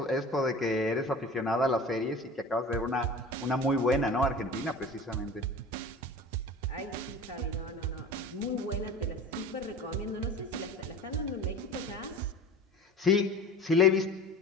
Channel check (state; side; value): normal; both; correlation 0.37